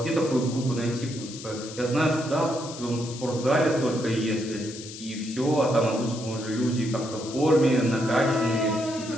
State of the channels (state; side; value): noise; left; hiss, 13 dB below the sound